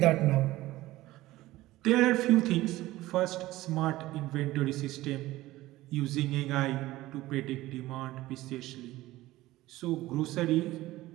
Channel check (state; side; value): quieter; left; 17.2 dB